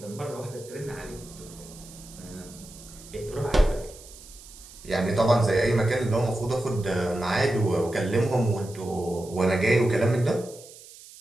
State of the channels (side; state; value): right; noise; hiss, 19 dB below the sound